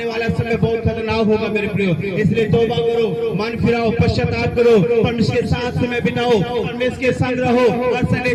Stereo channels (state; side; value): identical; both; correlation 1.00